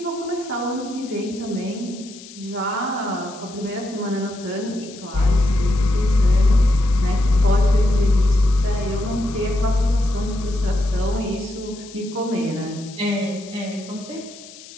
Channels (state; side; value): noise; left; hiss, 18 dB below the sound